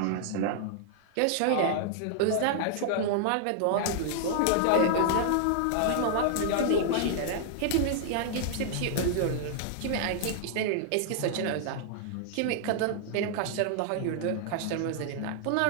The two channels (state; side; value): different; both; correlation -0.01